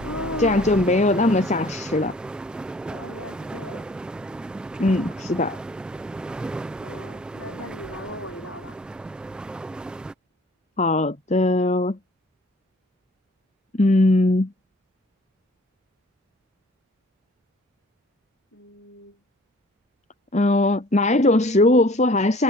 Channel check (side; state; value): both; normal; correlation 0.54